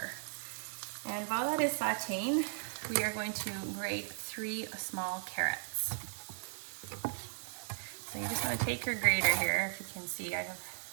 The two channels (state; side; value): silent; left; 53 dB below the other